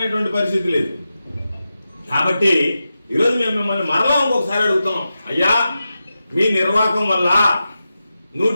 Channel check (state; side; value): inverted; both; correlation -0.91